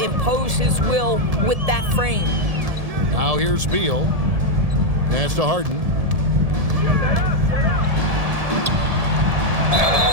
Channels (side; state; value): left; late; 1.7 ms